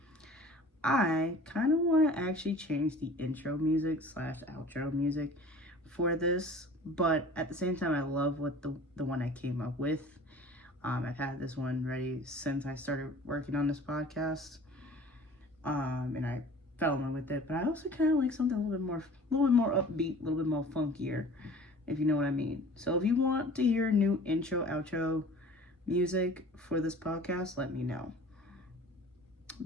I kind of want to actually change the intro music / outro music for this, but at the same time, I love what the one I came up with. I've had this one ready since I started working on this podcast, and I fell in love with it. But I also kind of like something a little bit more upbeat, a little bit more funkier, if you know what I mean. So if you want to hear new intro, outro music for this podcast, let me know,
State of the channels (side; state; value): both; normal; correlation 0.45